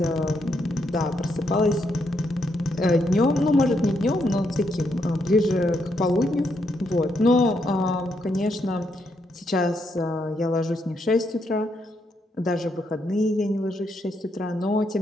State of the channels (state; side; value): normal; both; correlation 0.78